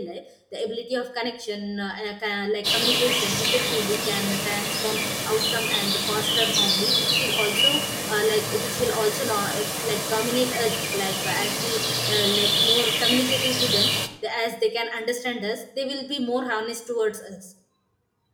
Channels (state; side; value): identical; both; correlation 1.00